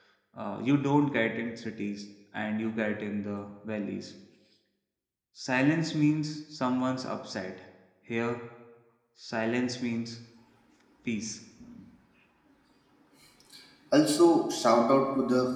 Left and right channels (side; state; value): both; identical; correlation 1.00